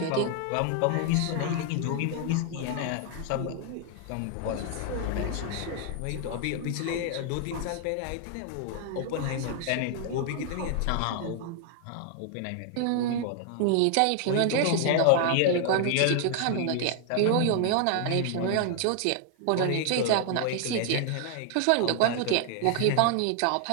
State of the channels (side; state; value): both; different; correlation 0.00